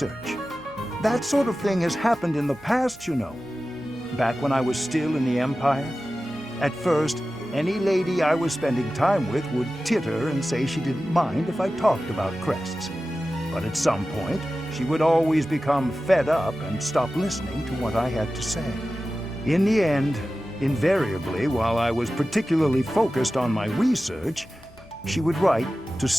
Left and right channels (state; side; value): normal; both; correlation 0.94